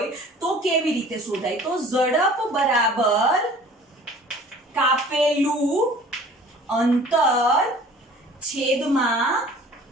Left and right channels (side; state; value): both; normal; correlation 0.48